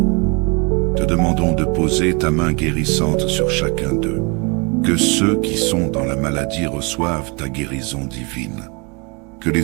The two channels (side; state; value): left; quieter; 31.2 dB